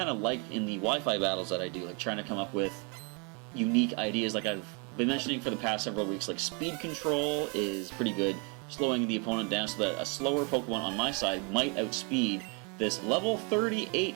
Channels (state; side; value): quieter; left; 34.3 dB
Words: of like in the Wi-Fi battles that I do, like trying to come up with unique ideas like I've been mentioning for the past several weeks. Like speed control is pretty good, slowing the opponent down so that a slower Pokemon on my side might outspeed this level 38